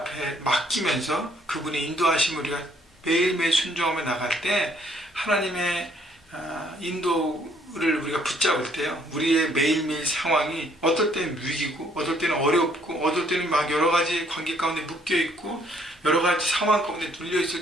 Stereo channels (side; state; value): both; normal; correlation 0.65